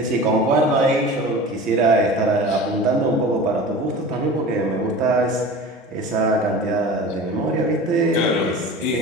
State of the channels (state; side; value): normal; both; correlation 0.36